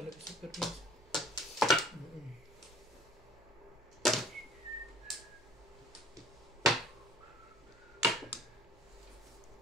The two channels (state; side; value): noise; right; hum, 27 dB below the sound